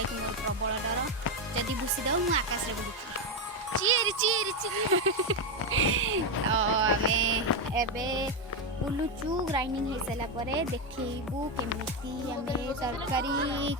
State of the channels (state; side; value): normal; both; correlation 0.07